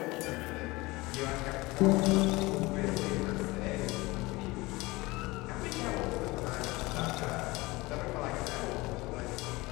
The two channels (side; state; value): right; quieter; 21.9 dB